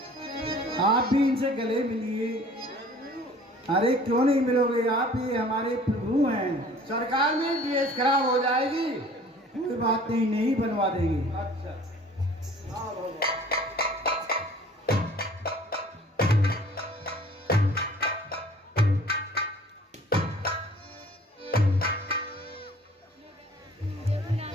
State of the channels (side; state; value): both; normal; correlation 0.50